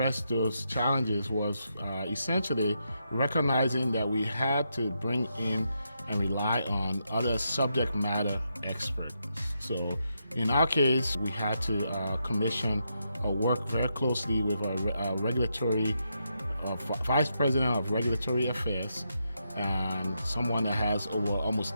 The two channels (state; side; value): inverted; both; correlation -0.82